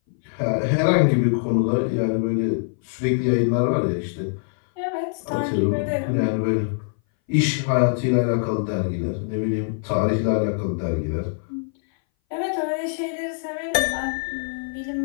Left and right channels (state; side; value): silent; right; 60 dB below the other